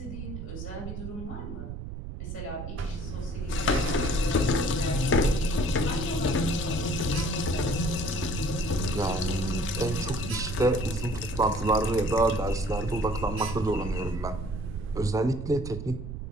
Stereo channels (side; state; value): right; noise; rumble, 8 dB below the sound